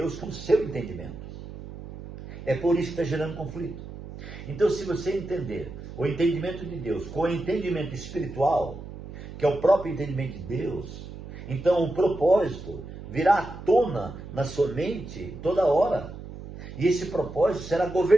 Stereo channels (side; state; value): right; noise; hum, 12 dB below the sound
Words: com o seu entendimento. É por isso que está gerando conflito. Então, se você entender o entendimento de Deus com o entendimento espiritual, que é o próprio entendimento de Deus, então o propósito virá à tona na sua mente toda hora. E esse propósito será